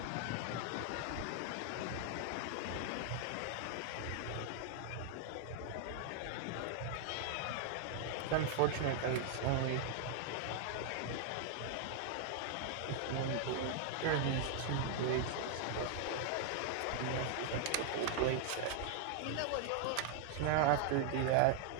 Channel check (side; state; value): both; different; correlation 0.00